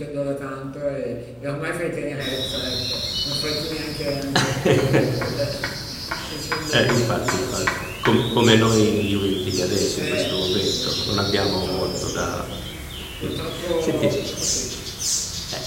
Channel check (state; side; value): identical; both; correlation 1.00